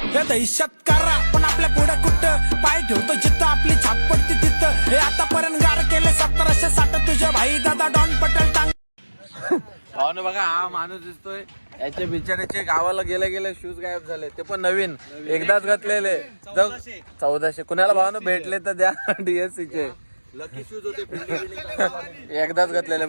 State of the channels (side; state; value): both; inverted; correlation -1.00